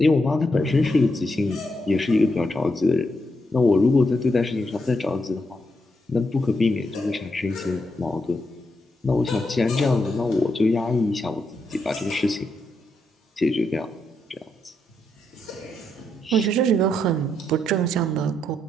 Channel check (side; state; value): both; normal; correlation 0.81